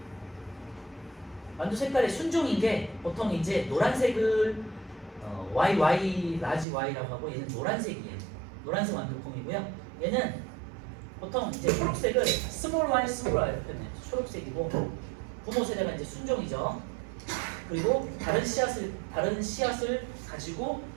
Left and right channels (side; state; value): left; drops out; at 6.7 s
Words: 완두 색깔의 순종인 게 보통 이제 노란색을 YY 라지 Y라고 하고 얘는 노란색이에요. 노란색 완두콩이고요. 얘는 보통 이제 초록색을 스몰 y 이렇게 표현해요. 초록색이고 부모 세대가 이제 순종이죠. 그리고 다른 씨앗을 가지고